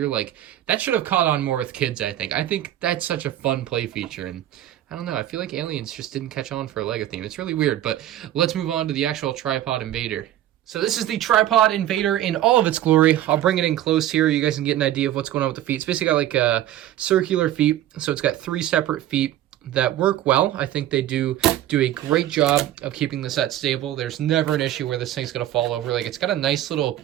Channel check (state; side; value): quieter; left; 12.7 dB